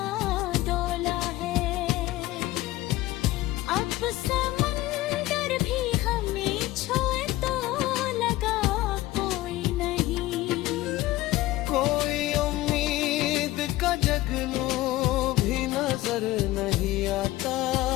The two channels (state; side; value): quieter; right; 17.1 dB